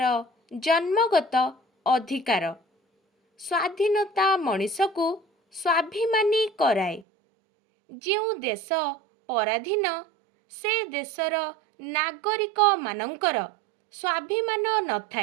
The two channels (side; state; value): left; drops out; at 7.1 s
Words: जन्मगत अधिकार। स्वाधीनता मनीष को स्वाभिमानी कराए। जो देश पराधीन से देशर नागरिक मानंकर स्वाभिमान न